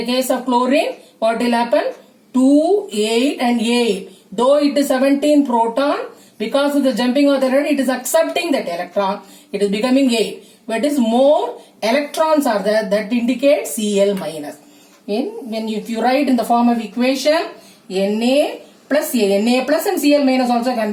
case of chlorine, what will happen? 2, 8 and 8. Though it is 17 proton, because of the jumping of the electron, it is accepting that electron. It is becoming 8. But it is more electrons are there, that indicates Cl minus. If you write in the form of equation, Na plus and Cl minus also can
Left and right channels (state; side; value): identical; both; correlation 1.00